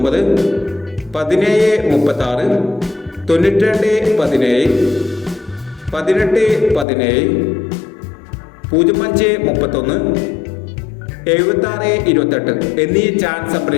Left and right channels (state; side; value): drops out; right; at 6.9 s